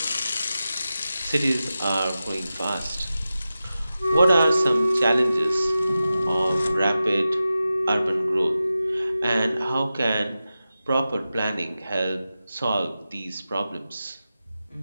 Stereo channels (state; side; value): inverted; both; correlation -0.92